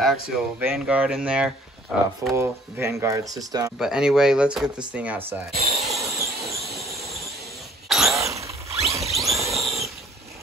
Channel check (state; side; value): normal; both; correlation 0.57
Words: Vanguard in there, full Vanguard system. But anyway, let's get this thing outside.